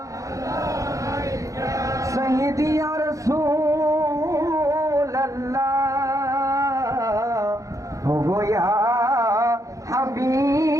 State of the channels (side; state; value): left; late; 0.16 ms